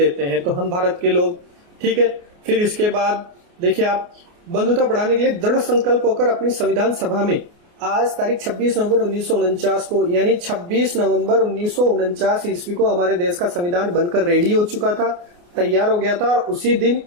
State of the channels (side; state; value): left; late; 29 ms